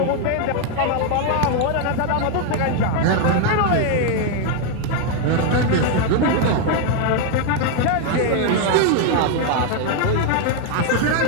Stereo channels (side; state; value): both; different; correlation 0.01